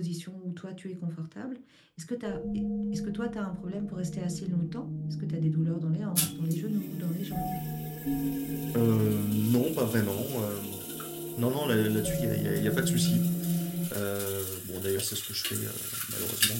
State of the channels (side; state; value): both; identical; correlation 1.00